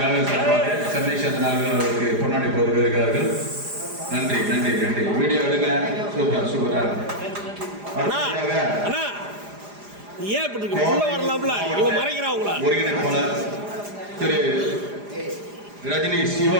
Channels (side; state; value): left; late; 4.9 ms